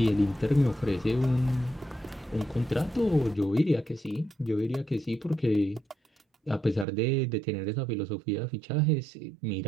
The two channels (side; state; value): left; drops out; at 6.9 s